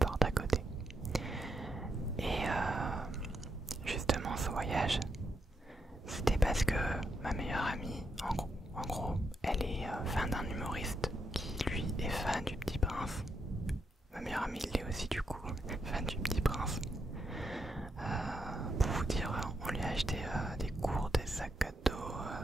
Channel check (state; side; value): normal; both; correlation 0.81